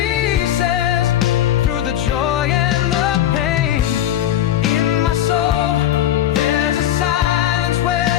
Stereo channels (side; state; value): right; quieter; 11.8 dB